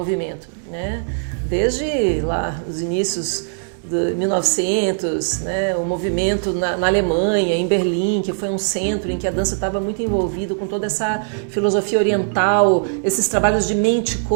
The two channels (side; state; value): left; silent; digital silence